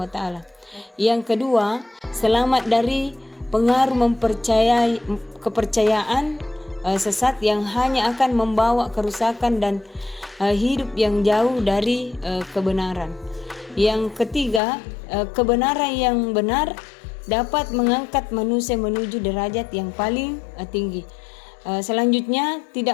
wa taala. Yang kedua, selamat dari pengaruh kepercayaan sesat yang hanya akan membawa kerusakan dan hidup yang jauh dari kebenaran. Yang ketiga, kebenaran yang benar dapat mengangkat manusia menuju derajat yang paling tinggi. Selanjutnya,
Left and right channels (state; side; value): drops out; right; at 14.6 s